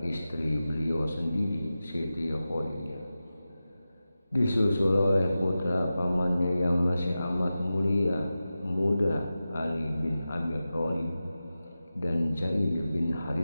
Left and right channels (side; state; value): both; inverted; correlation -0.94